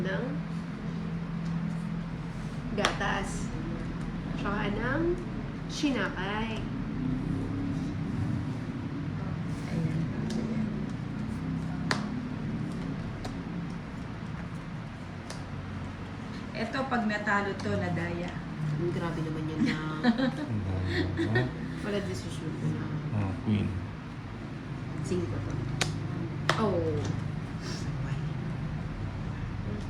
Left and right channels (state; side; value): identical; both; correlation 1.00